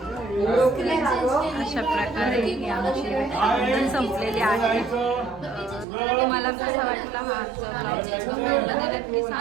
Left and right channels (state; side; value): drops out; left; at 5.9 s